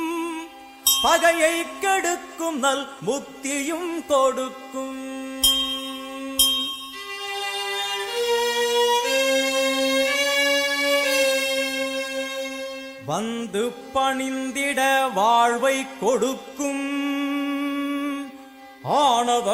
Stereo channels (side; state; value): both; identical; correlation 1.00